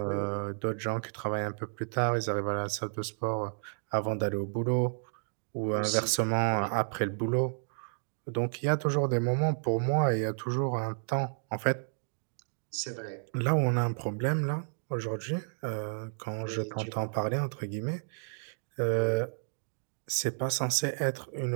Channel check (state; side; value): silent; left; digital silence